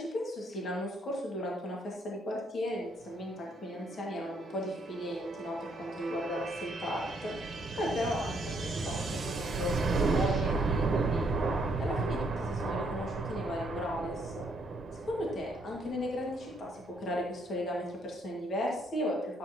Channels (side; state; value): both; normal; correlation 0.70